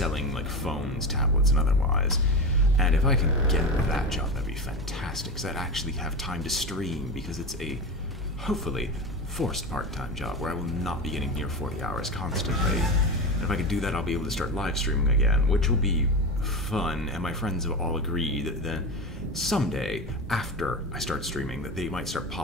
like, phones, tablets, and otherwise. And if I can get that job, that'd be fantastic, because I'd actually have time to stream, because it's a, hopefully, forced part-time job where I will not be getting near 40 hours constantly. And if I can do that, I'll be able to start live streaming again, which will be fun, and my friends have all agreed that then someday, after I start streaming, that they might start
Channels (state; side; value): normal; both; correlation 0.23